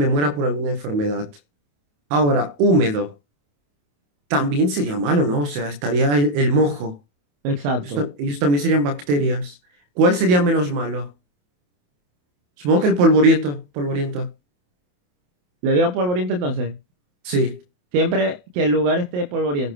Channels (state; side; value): late; left; 28 ms